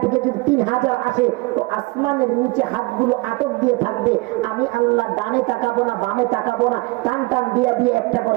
থেকে যদি 3000 আসে, তো আসমানের নিচে হাতগুলো আটক দিয়ে থাকবে। আমি আল্লাহ ডানে তাকাবো না, বামে তাকাবো না, টান টান দিয়ে দিয়ে একটা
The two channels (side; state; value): left; quieter; 23.8 dB